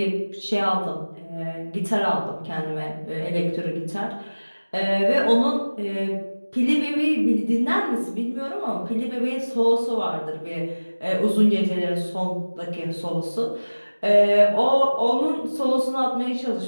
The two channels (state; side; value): inverted; both; correlation -1.00